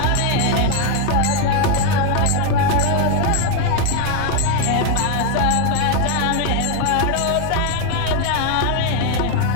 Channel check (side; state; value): both; different; correlation 0.01